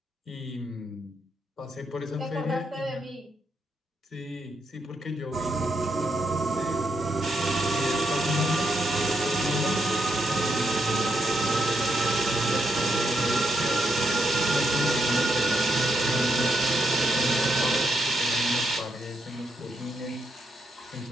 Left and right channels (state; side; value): normal; both; correlation 0.79